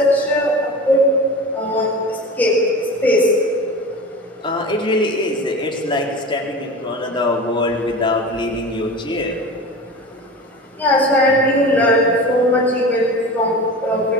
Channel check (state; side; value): normal; both; correlation 0.33